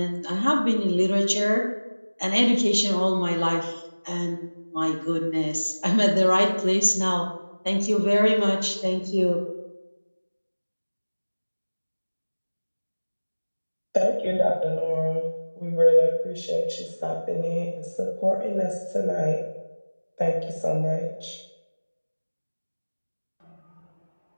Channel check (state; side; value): inverted; both; correlation -1.00